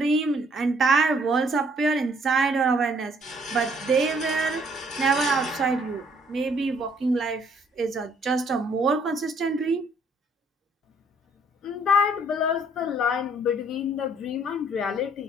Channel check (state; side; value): normal; both; correlation 0.64